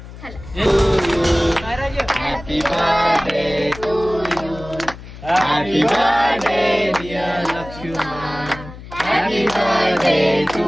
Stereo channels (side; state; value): left; noise; hum, 15 dB below the sound